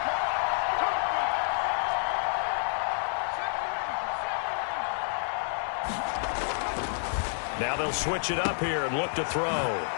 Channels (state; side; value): silent; right; digital silence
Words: Now they'll switch it up here and look to throw.